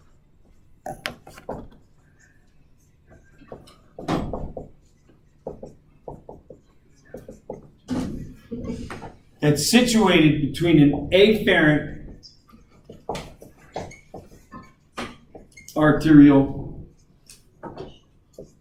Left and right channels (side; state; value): both; identical; correlation 1.00